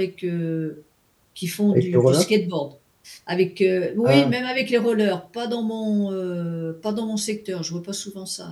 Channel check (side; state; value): both; identical; correlation 1.00